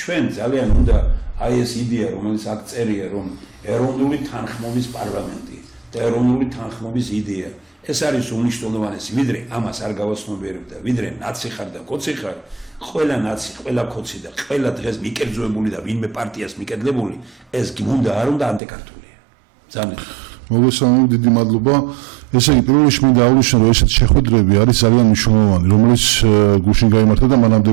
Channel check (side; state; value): left; drops out; at 18.6 s